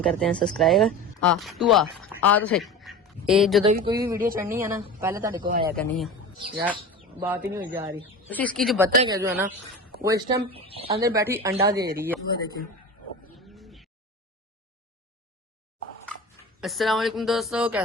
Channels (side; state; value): both; normal; correlation 0.31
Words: करते हैं सब्सक्राइब। तू आ तो सही। ये जो भी कोई भी वीडियो चढ़नी है ना, पहले तेरे को आया करनी है यार, बात ही नहीं हो जा रही। तो इसकी जो बतख है जो है ना, वो इस टाइम अंदर बैठी अंडा दे रही है। वो देखिए। अस्सलाम वालेकुम दोस्तों,